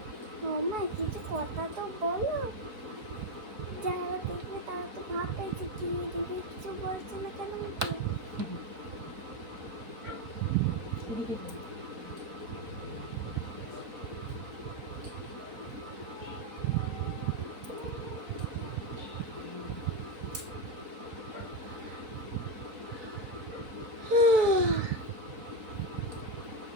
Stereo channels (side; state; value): left; late; 4.5 ms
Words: মাম্মা কিছু কথা তো বলো, যারা দেখবে তারা তো ভাববে যে কি দিদি কিছু বলছে না কেন আমাকে? এদিকে বলো।